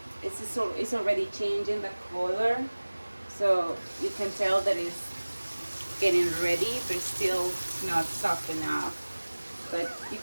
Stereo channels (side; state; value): both; inverted; correlation -1.00